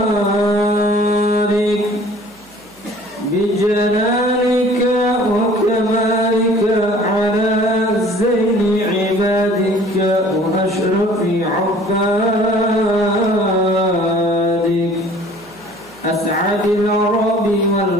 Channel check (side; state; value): right; noise; hum, 29 dB below the sound